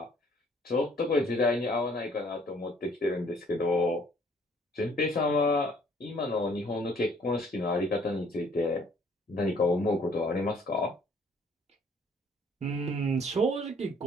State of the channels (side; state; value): both; normal; correlation 0.60